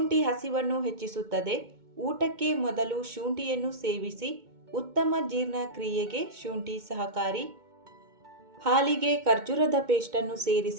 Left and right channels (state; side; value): late; left; 2.2 ms